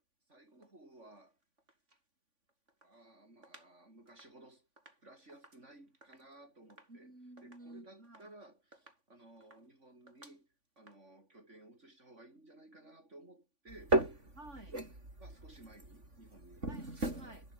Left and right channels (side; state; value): left; late; 3.5 ms